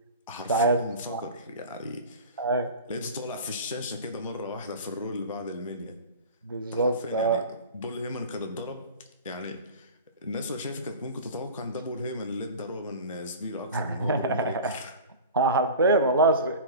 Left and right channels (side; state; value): both; inverted; correlation -0.36